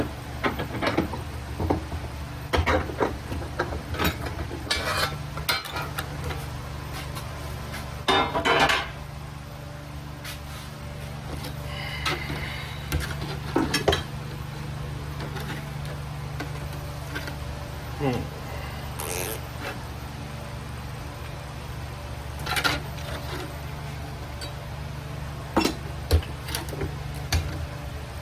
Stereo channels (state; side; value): identical; both; correlation 1.00